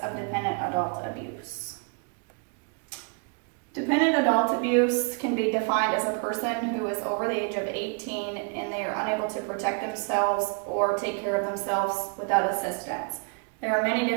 of Dependent Adult Abuse. Dependent adult abuse can be defined as a person who is over the age of 18 and they are unable to protect themselves or take care of themselves without assistance. There are many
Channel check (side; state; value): left; quieter; 38.6 dB